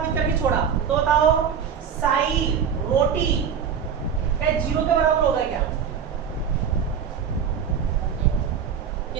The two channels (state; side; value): quieter; left; 7.4 dB